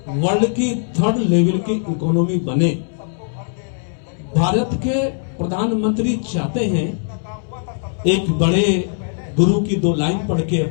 वर्ल्ड की 3rd लेवल की इकोनॉमी बने। भारत के प्रधानमंत्री चाहते हैं, एक बड़े गुरु की 2 लाइन पढ़ के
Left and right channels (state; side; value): silent; right; 66 dB below the other